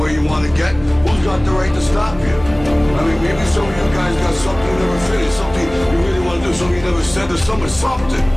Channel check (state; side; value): noise; right; hum, 17 dB below the sound